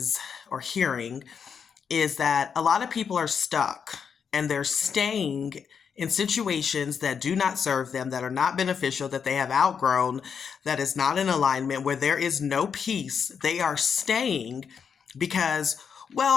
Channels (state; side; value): quieter; right; 6.7 dB